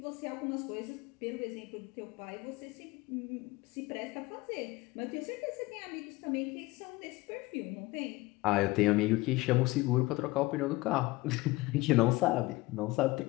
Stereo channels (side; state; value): right; quieter; 20.7 dB